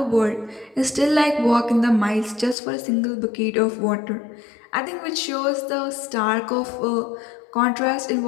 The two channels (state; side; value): drops out; right; at 2.6 s